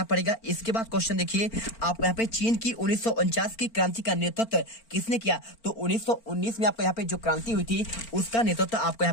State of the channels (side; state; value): right; late; 4.4 ms